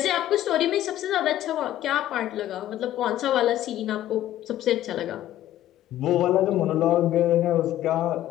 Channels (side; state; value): right; quieter; 13.2 dB